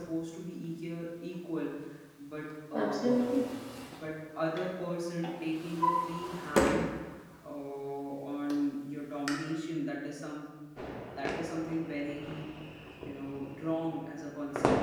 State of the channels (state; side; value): identical; both; correlation 1.00